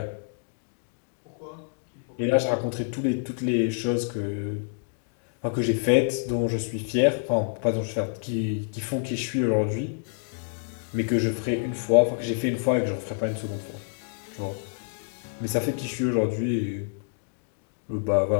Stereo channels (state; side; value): silent; right; digital silence